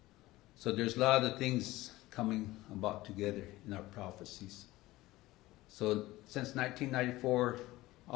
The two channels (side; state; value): right; quieter; 18.1 dB